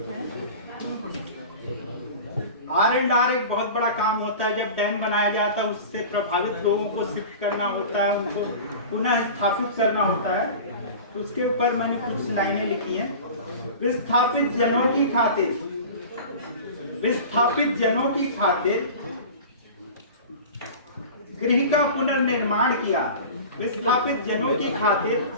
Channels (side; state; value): both; inverted; correlation -0.36